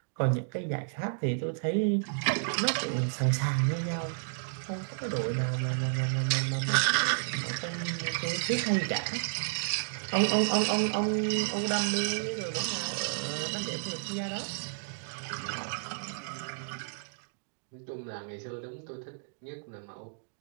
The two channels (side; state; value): left; silent; digital silence